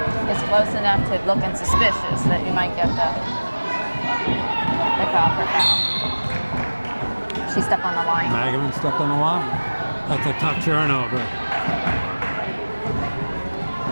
it's close enough to looking suspicious that you might get the call for foul. She stepped on the line. Magerman stepped on the line. That's a tough turnover.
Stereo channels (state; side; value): inverted; both; correlation -1.00